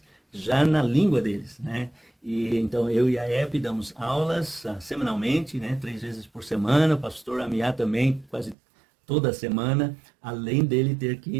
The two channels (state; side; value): drops out; left; at 8.6 s